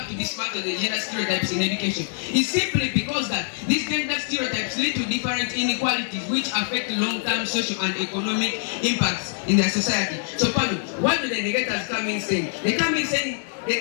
to dismantle the gender stereotypes in education? It's simply because that these gender stereotypes lead to different inequalities which affect long-term social and economic impacts in their society. So, Pano, what do the negators come in saying? They come in saying,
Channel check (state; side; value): silent; right; digital silence